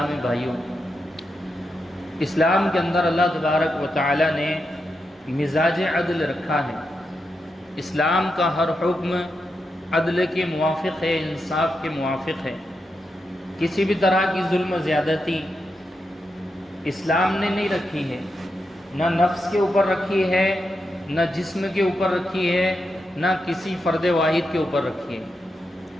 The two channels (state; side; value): normal; both; correlation 0.86